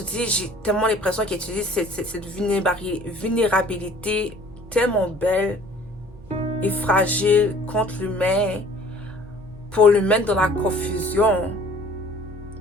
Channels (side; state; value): both; normal; correlation 0.52